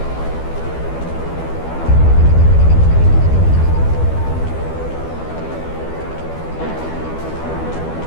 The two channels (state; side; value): late; right; 12 ms